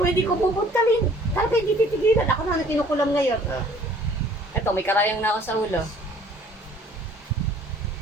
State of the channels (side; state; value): both; normal; correlation 0.55